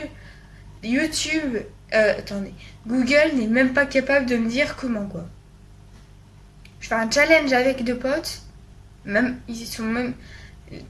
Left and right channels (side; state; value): both; identical; correlation 1.00